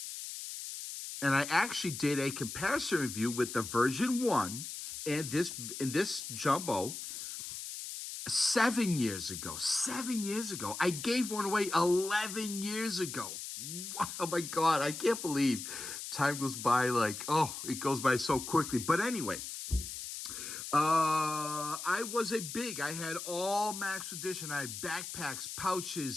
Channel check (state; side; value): noise; left; hiss, 8 dB below the sound